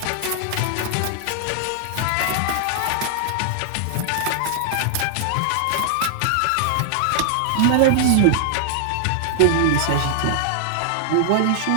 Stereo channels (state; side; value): different; both; correlation 0.00